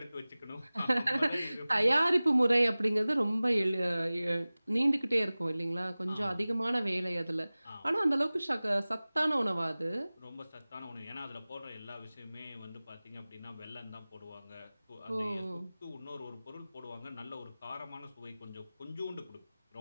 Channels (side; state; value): both; inverted; correlation -0.98